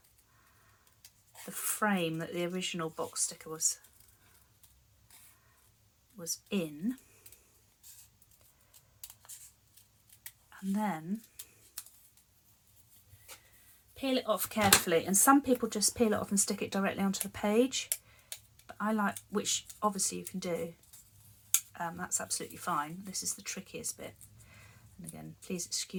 frame that the original box sticker was in, and then peel it off carefully. And some people just peel it off and stick it directly onto the page, but I like, which obviously you can do, that's absolutely fine. This is the trickiest bit, and again, please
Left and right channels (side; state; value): both; identical; correlation 1.00